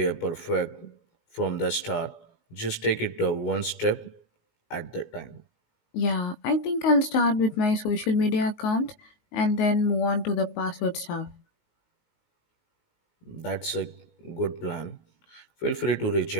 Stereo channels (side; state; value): right; late; 19 ms